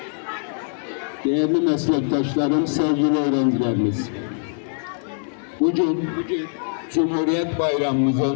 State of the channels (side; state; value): right; silent; digital silence